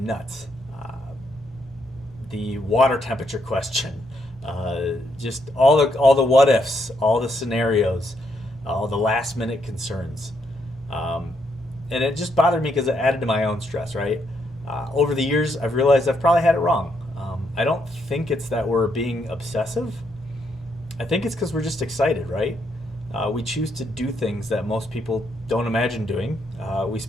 The water temperature question, just all the what ifs, all the scenarios, all the last minute concerns. And it just bothered me because it added to my own stress, right? Over the years, I've realized I've probably had it wrong. I don't think it's that we're being obsessive. I think it's because we're just excited, right? We choose to do things that most people don't imagine doing. We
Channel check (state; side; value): normal; both; correlation 0.76